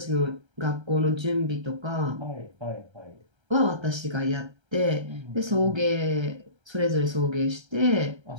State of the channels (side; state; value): left; late; 1.3 ms